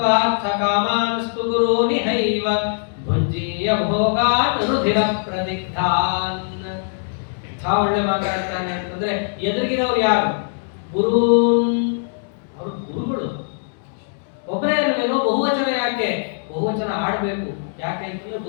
ಕಾಮಾನ್ಸ್ತು ಗುರೂನಿಹೈವ ಭುಂಜೀಯ ಭೋಗಾನ್ ರುಧಿರ ಪ್ರದಿಗ್ಧಾನ್. ಒಳ್ಳೆ ಮಾತಾಡ್ತಾನೆ ಅಂತಂದ್ರೆ ಎದುರಿಗಿರೋರು ಯಾರು? ಗುರೂನ್, ಅವರು ಗುರುಗಳು. ಒಬ್ಬರೇ ಅಲ್ವೇನೋ, ಬಹುವಚನ ಯಾಕೆ? ಬಹುವಚನ ಆಡಬೇಕು. ಯಾಕೆ ಅಂತಂದ್ರೆ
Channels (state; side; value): silent; right; digital silence